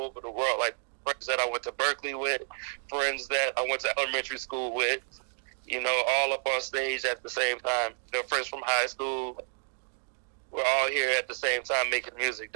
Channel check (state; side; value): silent; left; digital silence